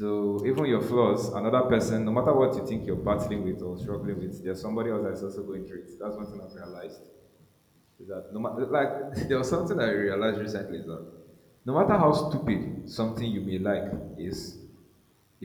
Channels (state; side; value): identical; both; correlation 1.00